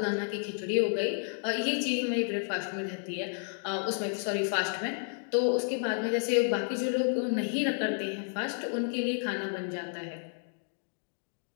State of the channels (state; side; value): silent; right; 57 dB below the other